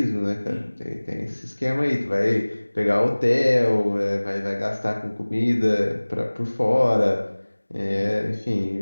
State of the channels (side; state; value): both; inverted; correlation -1.00